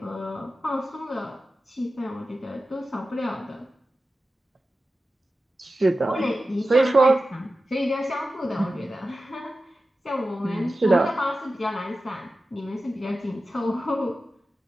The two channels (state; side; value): normal; both; correlation 0.94